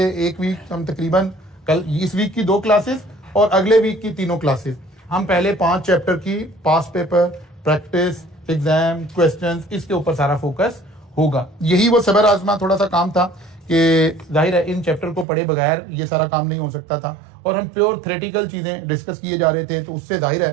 एक वीक हम तकरीबन कल इस वीक की 2 क्लासेस और अगले वीक की 3 क्लासेस हम पहले 5 चैप्टर की पास पेपर, प्रैक्टिस, एग्जाम, क्वेश्चंस, इसके ऊपर सारा फोकस होगा। यही वो सबर आजमा थोड़ा सा काम था कि जाहिर है इन चैप्टर को पढ़े बगैर ये सारा काम नहीं हो सकता था, और हम प्योर थ्योरेटिकल चीजें डिस्कस किए जा रहे थे, तो उससे जाहिर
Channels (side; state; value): left; drops out; at 15.2 s